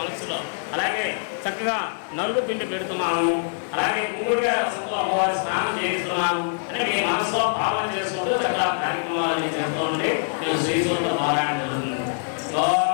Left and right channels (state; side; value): silent; right; 63 dB below the other